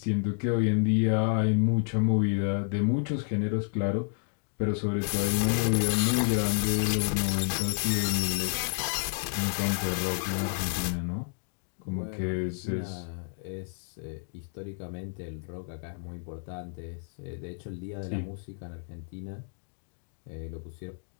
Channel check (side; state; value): right; silent; digital silence